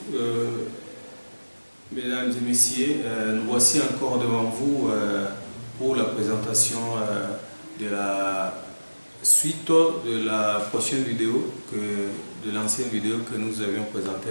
mesdames et messieurs. Nous voici encore devant vous pour la présentation de la suite de la prochaine vidéo, de l'ancienne vidéo que nous avions présentée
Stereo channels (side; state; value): both; inverted; correlation -1.00